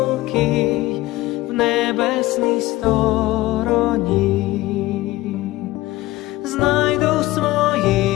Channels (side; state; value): right; quieter; 17.8 dB